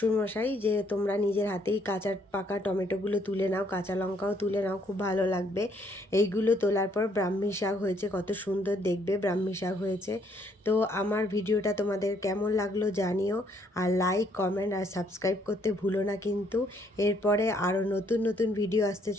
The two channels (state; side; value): normal; both; correlation 0.68